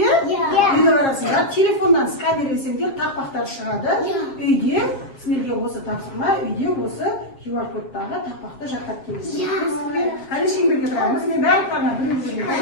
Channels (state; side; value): late; right; 7.4 ms